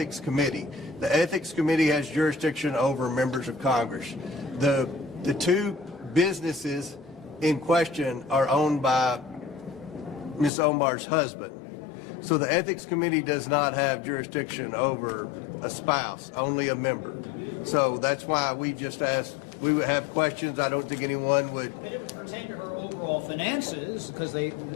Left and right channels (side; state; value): right; drops out; at 10.5 s